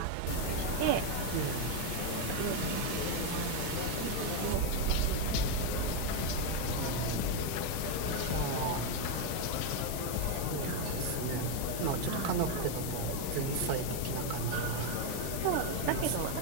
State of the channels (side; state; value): both; different; correlation 0.02